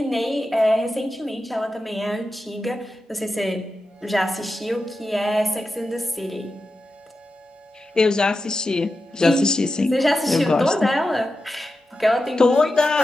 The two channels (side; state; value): both; normal; correlation 0.91